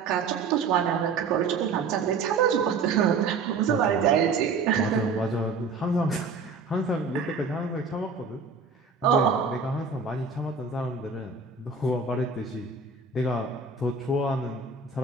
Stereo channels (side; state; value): left; quieter; 4.6 dB